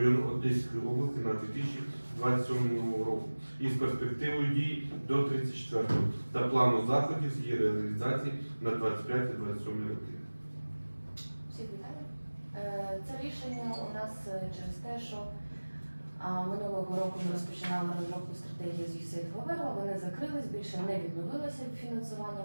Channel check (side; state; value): both; inverted; correlation -1.00